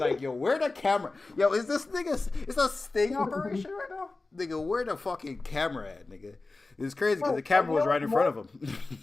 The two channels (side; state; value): right; quieter; 3.4 dB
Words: yo, where the camera? Yo, is this nigga? Is that a sting operation right now? Nigga, where the fucking camera at, nigga? It's crazy because the camera was right in front of him.